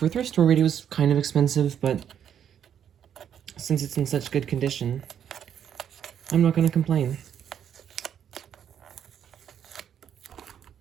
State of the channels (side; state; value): left; quieter; 9.0 dB